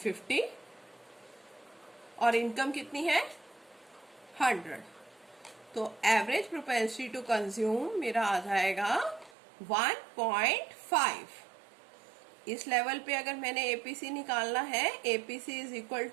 और इनकम कितनी है, 100। तो एवरेज प्रोपेंसिटी टू कंज्यूम मेरा आ जाएगा 1.5। इस लेवल पे अगर मैंने एपीसी निकालना है, एपीसी इज इक्वल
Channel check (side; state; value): left; drops out; at 9.3 s